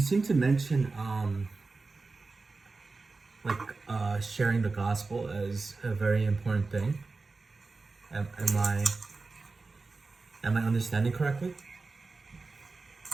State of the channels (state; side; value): quieter; left; 3.8 dB